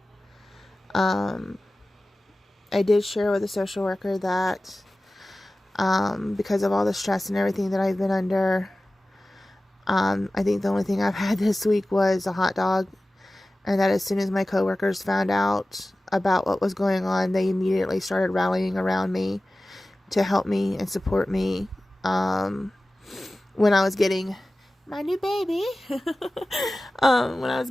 I did share with a social worker that because of all the stress and everything that I've been under, I think the only thing I've had this week was a hot dog, and that as soon as my coworkers found out about what was going on, they immediately started rallying around me to help me and support me when I was getting my new baby.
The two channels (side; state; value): both; normal; correlation 0.96